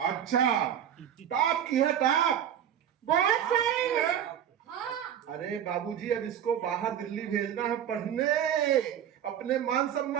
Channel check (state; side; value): quieter; left; 9.7 dB